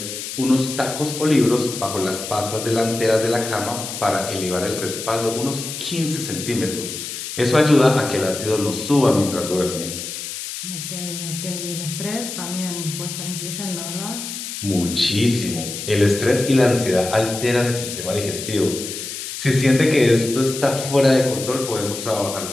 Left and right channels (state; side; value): noise; left; hiss, 7 dB below the sound